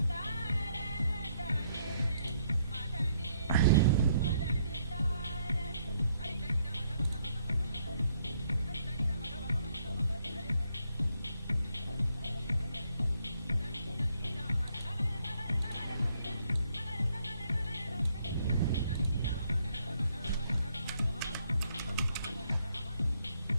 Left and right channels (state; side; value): inverted; both; correlation -0.71